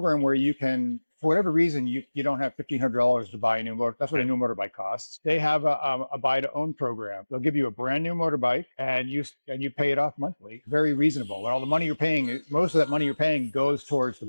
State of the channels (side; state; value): both; inverted; correlation -1.00